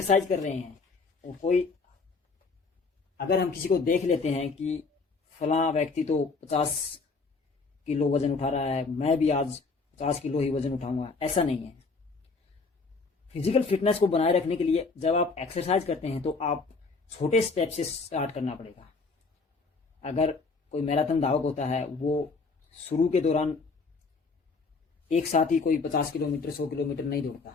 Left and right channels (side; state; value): right; quieter; 4.2 dB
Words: कर रहे हैं और कोई, अगर हम किसी को देख लेते हैं कि फलां व्यक्ति तो 50 किलो वजन उठा रहा है, मैं भी आज 50 किलो ही वजन उठाऊंगा, ऐसा नहीं है। फिजिकल फिटनेस को बनाए रखने के लिए जब आप एक्सरसाइज करते हैं तो आप छोटे स्टेप से स्टार्ट करना पड़ेगा। अगर कोई मैराथन धावक होता है, वो शुरू के दौरान एक साथ ही कोई 50 किलोमीटर 100 किलोमीटर नहीं